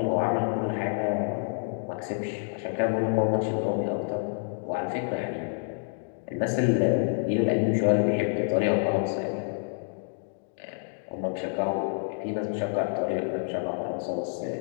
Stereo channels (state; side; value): silent; right; digital silence